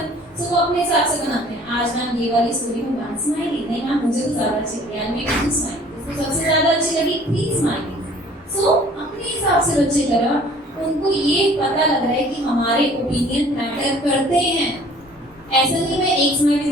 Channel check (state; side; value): normal; both; correlation 0.52